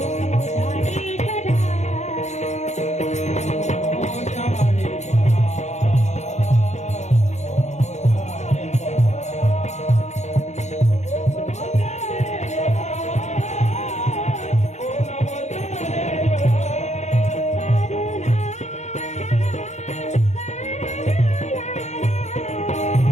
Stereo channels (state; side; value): late; right; 0.33 ms